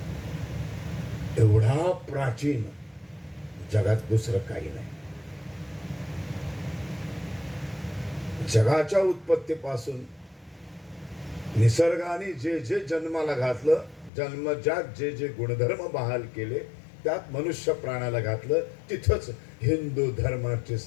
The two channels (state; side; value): drops out; right; at 14.1 s